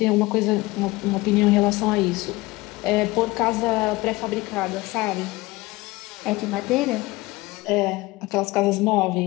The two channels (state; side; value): quieter; right; 20.9 dB